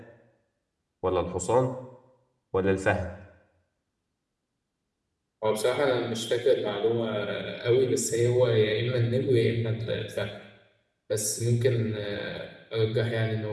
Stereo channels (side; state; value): both; identical; correlation 1.00